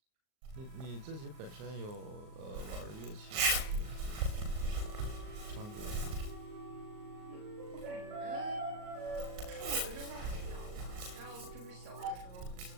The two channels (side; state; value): left; late; 38 ms